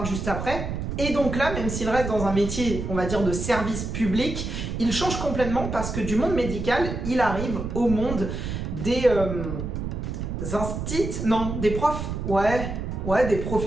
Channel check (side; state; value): right; noise; rumble, 4 dB below the sound